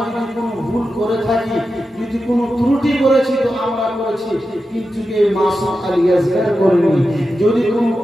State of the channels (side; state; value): both; normal; correlation 0.91